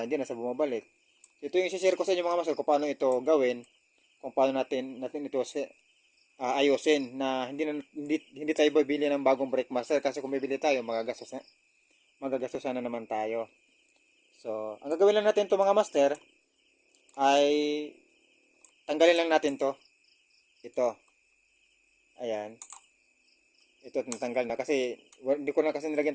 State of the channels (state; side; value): identical; both; correlation 1.00